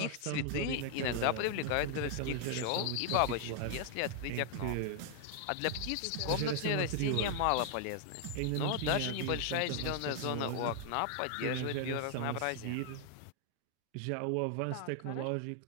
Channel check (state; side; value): different; both; correlation 0.00